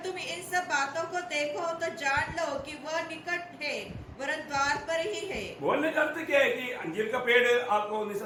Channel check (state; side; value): identical; both; correlation 1.00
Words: तुम इन सब बातों को देखो तो जान लो कि वह निकट है, वरन द्वार पर ही है। बोलने का अर्थ क्या है कि अंजीर का पेड़ आपको